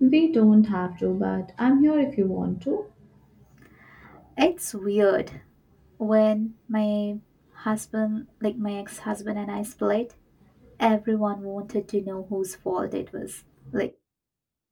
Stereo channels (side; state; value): both; identical; correlation 1.00